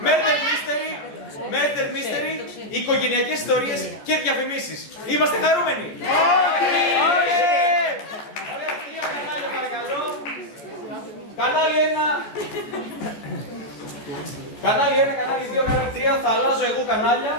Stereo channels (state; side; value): late; right; 14 ms